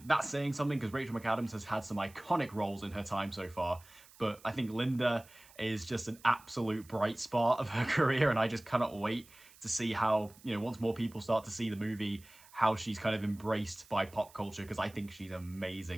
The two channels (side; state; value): right; noise; hiss, 24 dB below the sound